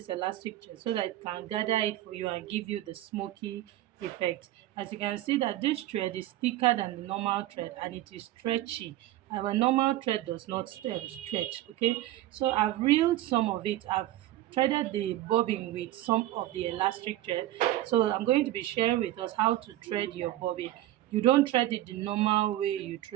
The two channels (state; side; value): quieter; left; 14.8 dB